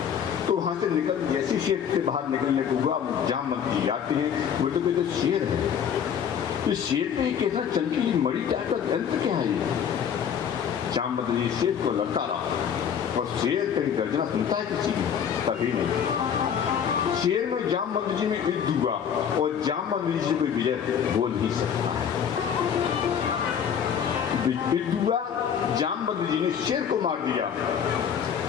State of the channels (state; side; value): quieter; right; 8.0 dB